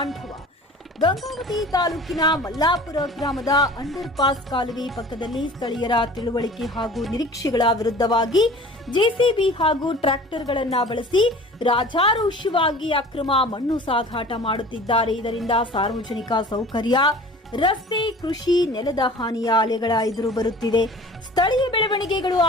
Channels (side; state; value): both; normal; correlation 0.43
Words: ಗಂಗಾವತಿ ತಾಲೂಕಿನ ಮಲ್ಲಾಪುರ ಗ್ರಾಮದ ಅಂಡರ್ ಪಾಸ್ ಕಾಲುವೆ ಪಕ್ಕದಲ್ಲಿ ಸ್ಥಳೀಯರ ತಿಳುವಳಿಕೆ ಹಾಗೂ ನಿರೀಕ್ಷೆಗಳ ವಿರುದ್ಧವಾಗಿ ಜೆಸಿಬಿ ಹಾಗೂ ಟ್ರ್ಯಾಕ್ಟರ್ಗಳನ್ನು ಬಳಸಿ ರಾಜಾರೋಷವಾಗಿ ಅಕ್ರಮ ಮಣ್ಣು ಸಾಗಾಟ ಮಾಡುತ್ತಿದ್ದಾರೆ. ಇದರಿಂದ ಸಾರ್ವಜನಿಕ ಸೌಕರ್ಯ, ರಸ್ತೆ, ಕೃಷಿ, ನೆಲದ ಹಾನಿಯ ಅಲೆಗಳ ಎದುರು ಬರುತ್ತಿದೆ. ಸ್ಥಳೀಯ ಬೆಳವಣಿಗೆಗಳು